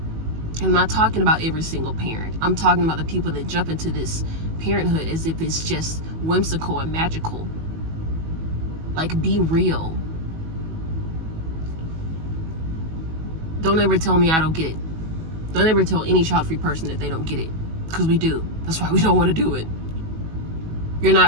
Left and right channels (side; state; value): left; late; 19 ms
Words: And I'm not talking about every single parent. I'm talking about the people that jump into this parenthood as if it's just whimsical and magical. Like, be real. Don't ever tell me I don't get it. Don't ever tell any child-free person that they don't get it. Because we do. That's why we don't want to do it. You're